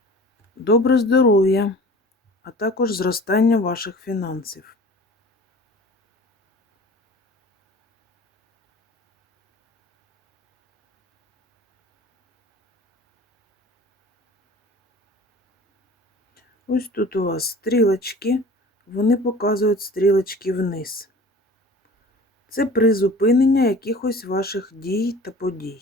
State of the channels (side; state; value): both; normal; correlation 0.43